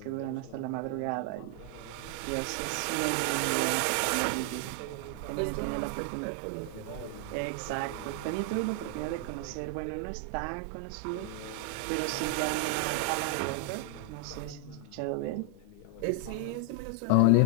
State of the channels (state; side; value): different; both; correlation 0.00